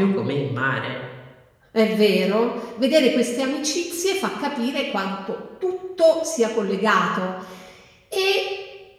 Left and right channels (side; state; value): both; identical; correlation 1.00